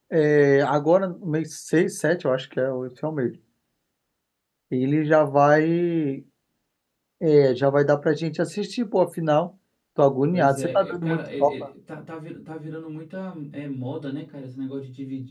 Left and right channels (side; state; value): both; identical; correlation 1.00